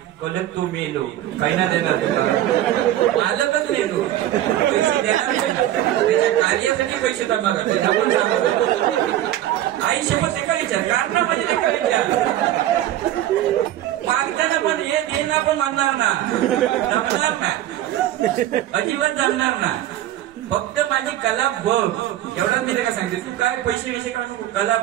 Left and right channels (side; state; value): left; quieter; 13.2 dB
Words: कलक तो मेलो पहिला देणार मालकच मेलो पैसे देणार त्याच्या कार्यासाठी पैसे जमा करते. आई शपथ एका विचार कारण माझे एका विचार मागताना पण हे देणार पण म्हणणार ना जमणार ना अजिबात जमणार ना. फक्त माझी कला बघ एवढाच मी का सांगते. तू काय पैसे विषय काढू नको कला